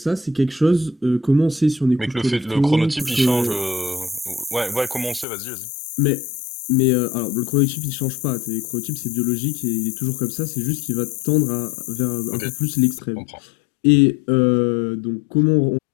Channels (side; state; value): right; drops out; at 5.2 s